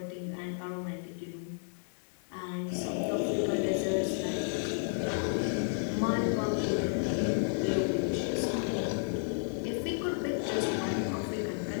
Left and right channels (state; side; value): silent; right; 56 dB below the other